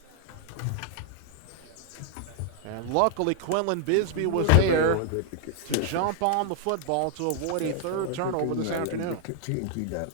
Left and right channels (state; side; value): different; both; correlation 0.00